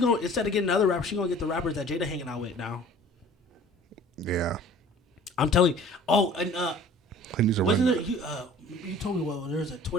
instead of getting another rapper, she gonna get the rappers that Jada hanging out with now. Yeah, I'm telling you. Oh, and he needs to wasn't it? You told me there was a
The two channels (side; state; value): both; normal; correlation 0.48